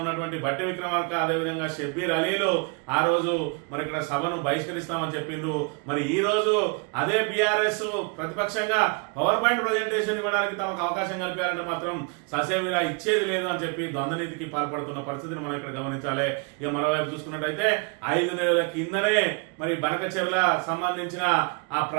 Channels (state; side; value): quieter; left; 32.6 dB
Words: ఉన్నటువంటి బట్టి విక్రమార్క, అదేవిధంగా షబ్బీర్ అలీలు ఆ రోజు మరి ఇక్కడ సభను బహిష్కరిస్తామని చెప్పిండ్రు. మరి ఈ రోజు అదే బీఆర్ఎస్ ప్రతిపక్షంగా పవర్ పాయింట్ ప్రజెంటేషన్ ఇవ్వడానికి తమకు అవకాశం కల్పారంటే మాత్రం ససేమిరా ఇచ్చేది లేదు అని చెప్పి ద్వంద్వనీతికి పాల్పడుతున్న పరిస్థితిని మనం ఇక్కడ గమనించాలి. ఇక మరోవైపు చూసుకున్నట్టయితే 5 నెలల కిందనే మరి బనకచెర్ల సంబంధించిన ఆ